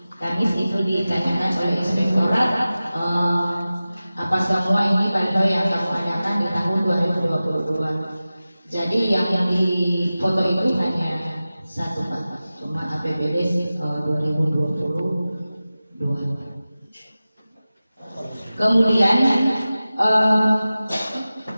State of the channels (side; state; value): both; inverted; correlation -0.95